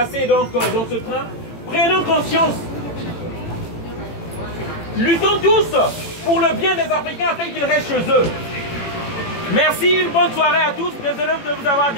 donc, dans ce train Prenons conscience. Luttons tous pour le bien des Africains afin qu'ils restent chez eux. Merci, une bonne soirée à tous. Désolé de vous avoir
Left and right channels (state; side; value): late; right; 18 ms